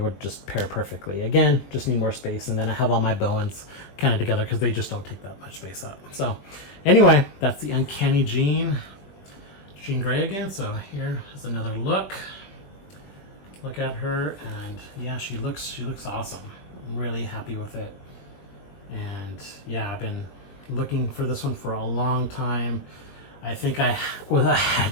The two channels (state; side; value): late; right; 21 ms